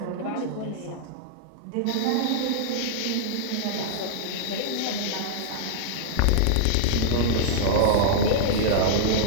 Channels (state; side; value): different; both; correlation -0.01